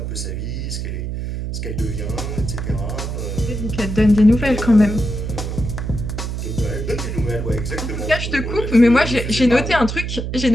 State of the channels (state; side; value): noise; right; hum, 4 dB below the sound